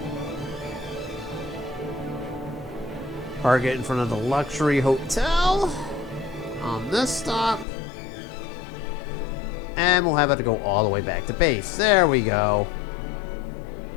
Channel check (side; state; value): right; drops out; at 7.7 s